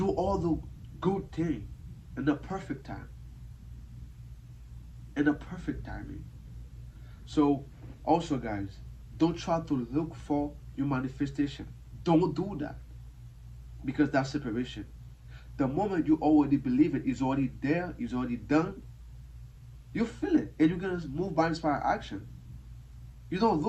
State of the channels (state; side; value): identical; both; correlation 1.00